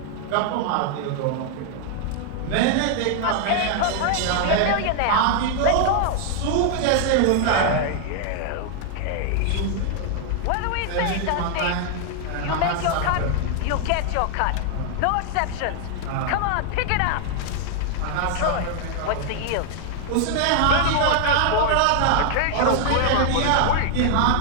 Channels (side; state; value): both; different; correlation 0.00